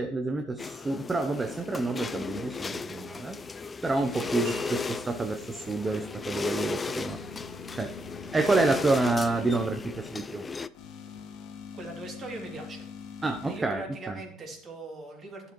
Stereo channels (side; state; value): both; normal; correlation 0.81